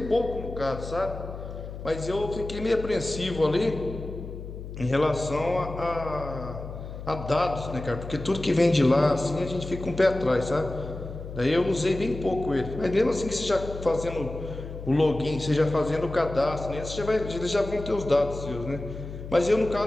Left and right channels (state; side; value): noise; left; hum, 10 dB below the sound